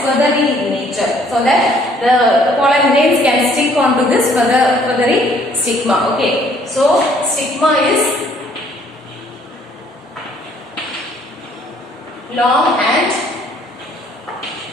feathery in nature, so that the pollen grains can stick onto this feathery stigma. Okay, so stigma is long and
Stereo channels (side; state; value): both; normal; correlation 0.61